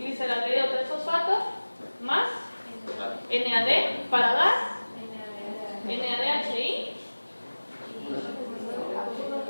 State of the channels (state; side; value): inverted; both; correlation -1.00